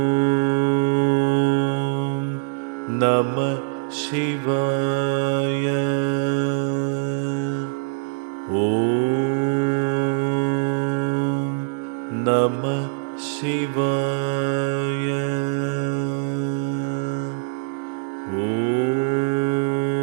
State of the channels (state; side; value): silent; left; 63 dB below the other